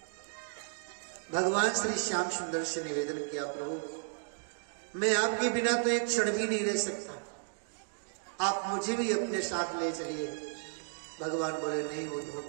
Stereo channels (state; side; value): silent; left; digital silence